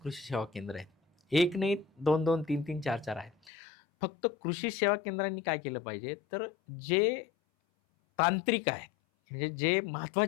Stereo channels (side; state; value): right; drops out; at 3.5 s